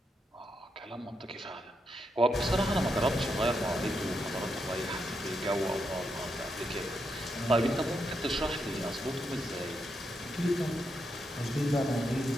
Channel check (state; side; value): normal; both; correlation 0.82